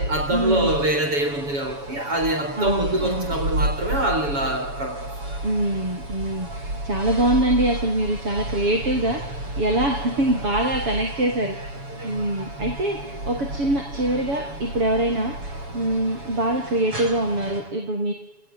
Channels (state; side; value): late; left; 7.1 ms